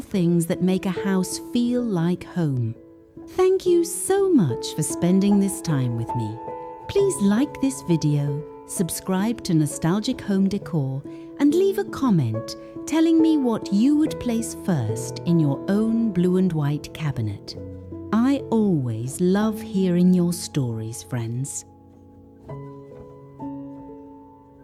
things that make a house feel like home. Thank you so much for spending this time with me. Please like this video, subscribe to Nostalgic Home Decor, and leave a comment telling me what you would place first in your own blue and white cabinet. I always love hearing your stories, friends.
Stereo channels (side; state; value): both; identical; correlation 1.00